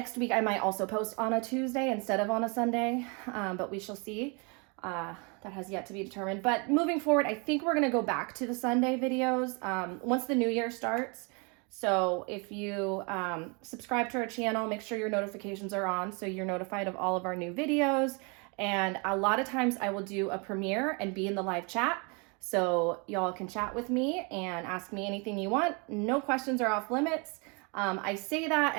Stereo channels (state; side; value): quieter; left; 32.3 dB